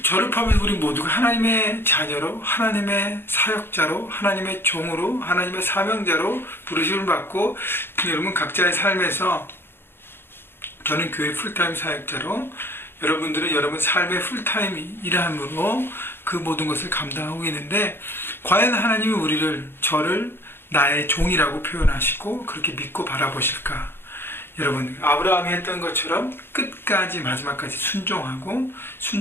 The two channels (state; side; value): late; right; 0.11 ms